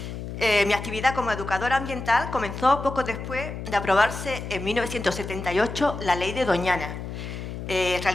Mi actividad como educadora ambiental comenzó poco después de aprobarse en 1978 la Ley de Doña Ana.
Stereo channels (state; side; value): noise; left; hum, 8 dB below the sound